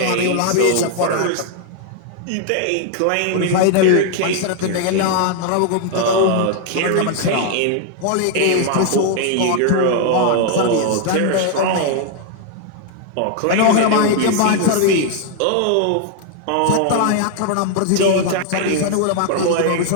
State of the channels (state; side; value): different; both; correlation 0.00